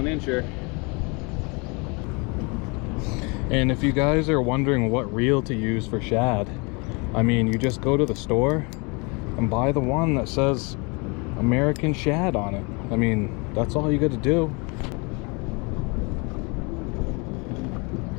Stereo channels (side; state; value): right; quieter; 30.1 dB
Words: incher. And if you guys are wondering what reel to use for shad, I mean, you just go to the store and buy the one that says American Shad on it. I mean, that's all you got to do.